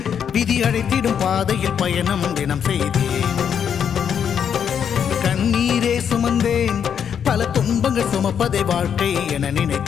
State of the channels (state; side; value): quieter; right; 8.0 dB